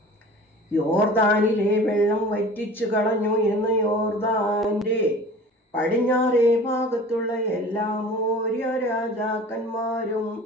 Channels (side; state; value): both; normal; correlation 0.42